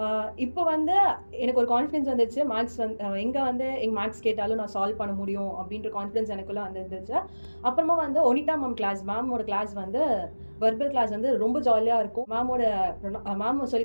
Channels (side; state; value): both; inverted; correlation -1.00